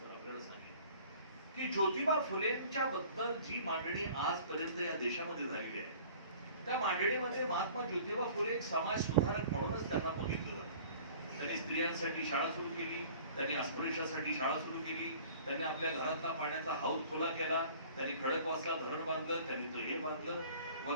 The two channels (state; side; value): inverted; both; correlation -0.48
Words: आपल्याला सांगेन की ज्योतिबा फुलेंच्या बद्दल जी मांडणी आजपर्यंत या देशामध्ये झालेली आहे, त्या मांडणीमध्ये महात्मा ज्योतिबा फुले एक समाज सुधारक म्हणूनच त्यांना बघितलं जातं. त्यांनी स्त्रियांसाठी शाळा सुरू केली, त्यांनी अस्पृश्यासाठी शाळा सुरू केली, त्यांनी आपल्या घरातला पाण्याचा हौद खुला केला, त्यांनी खडकवासला धरण बांधलं, त्यांनी हे बांधलं,